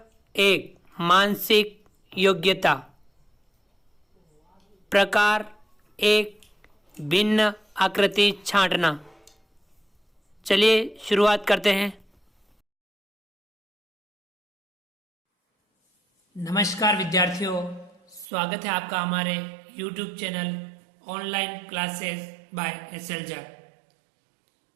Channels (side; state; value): left; drops out; at 18.2 s